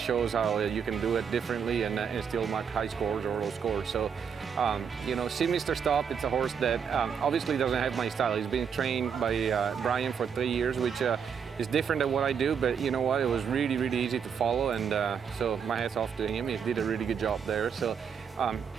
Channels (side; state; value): left; quieter; 7.0 dB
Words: how you can do it differently and still mark high scores or low scores. So, you know, See Mr. Stop, it's a horse that obviously doesn't have my style. He's been trained by Brian for 3 years, which is different than what I do, but you know what, it was really, really easy to follow, and so my hat's off to him. He did a really good job there. So,